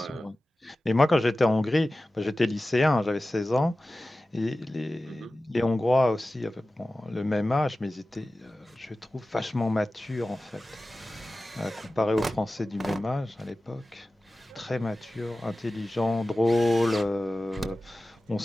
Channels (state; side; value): normal; both; correlation 0.96